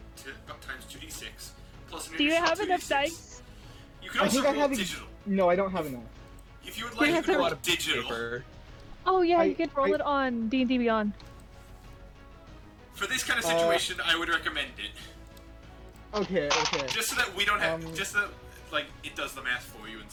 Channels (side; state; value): both; identical; correlation 1.00